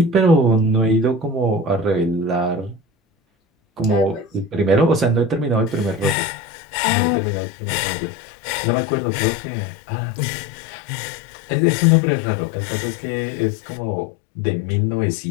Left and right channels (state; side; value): drops out; right; at 6.2 s